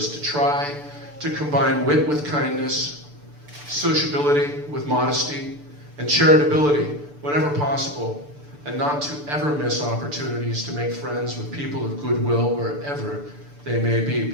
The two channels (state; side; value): late; left; 6.8 ms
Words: to try to combine wit with kindness, sociability with modesty, and charitability whenever possible, and not to ever miss opportunities to make friends with people of goodwill wherever they may be,